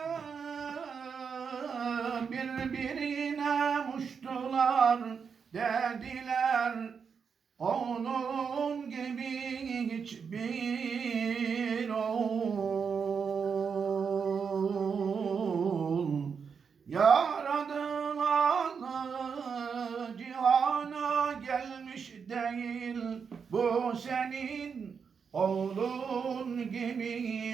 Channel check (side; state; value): left; quieter; 6.2 dB